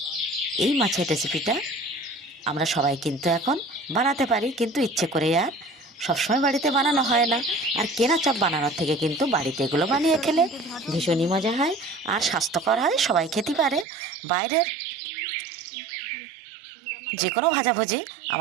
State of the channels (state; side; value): drops out; left; at 13.9 s